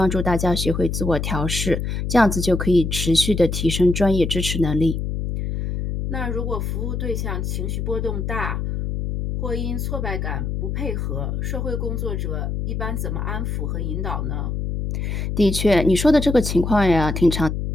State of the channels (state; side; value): noise; left; hum, 2 dB below the sound